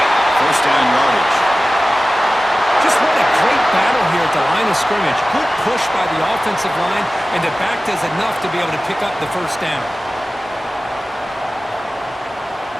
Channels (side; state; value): both; normal; correlation 0.96